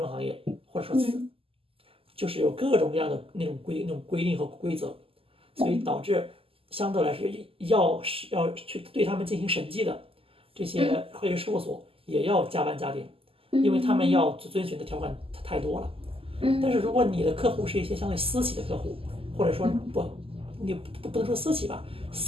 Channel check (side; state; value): left; late; 0.27 ms